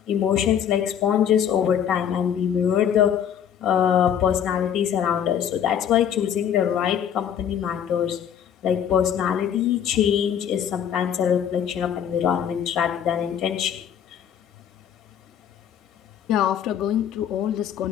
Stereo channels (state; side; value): quieter; right; 9.0 dB